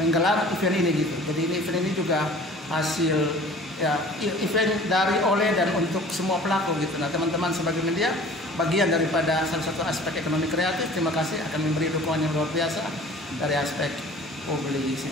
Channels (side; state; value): both; normal; correlation 0.47